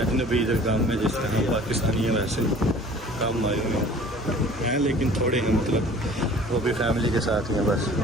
इधर काम में जिस तरह पाकिस्तानी है वैसे काम आए हुए हैं, लेकिन थोड़े हैं, मतलब वो भी फैमिली के साथ ही हैं। बस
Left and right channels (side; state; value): both; normal; correlation 0.48